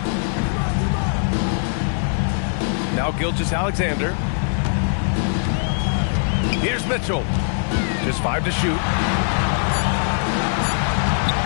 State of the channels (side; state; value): right; silent; digital silence